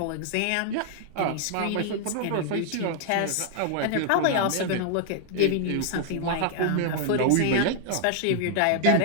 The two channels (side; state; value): both; different; correlation -0.01